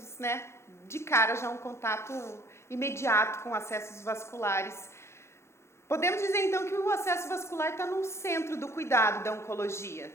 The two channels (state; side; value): late; right; 0.13 ms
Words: de cara já um contato imediato com acessos vasculares. Podemos dizer então que o acesso vascular está no centro do cuidado da oncologia,